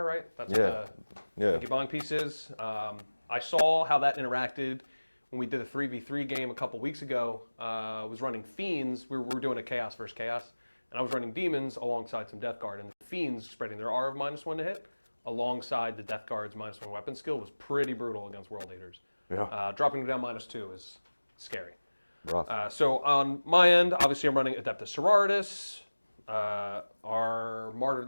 right? That's what the Stinky Bong piece is. I saw how that interacted when we did a 3v3 game a couple weeks ago. I was running Fiends. We were doing a Chaos versus Chaos. And I was running Demons alongside some Death Guard. And the Fiends spreading their R of -1 to hit alongside the Death Guard's -1 weapon skill was pretty brutal against World Eaters. Yeah. Dropping them down -2 is scary. Rough. So on my end, obviously I'm running Adepta Sororitas. Our Martyred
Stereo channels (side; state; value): both; inverted; correlation -1.00